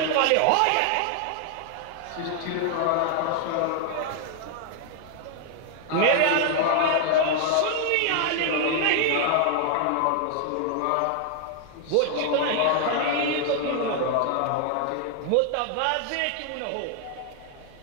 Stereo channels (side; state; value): both; different; correlation 0.00